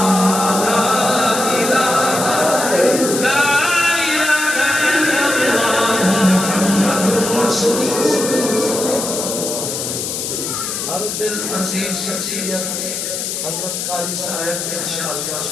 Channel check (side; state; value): left; noise; hiss, 4 dB below the sound